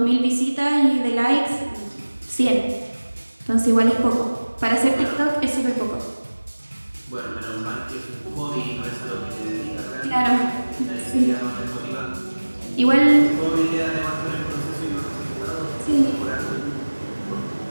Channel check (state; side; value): inverted; both; correlation -1.00